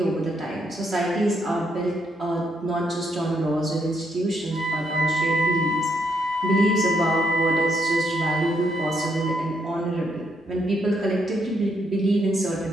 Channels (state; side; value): normal; both; correlation 0.76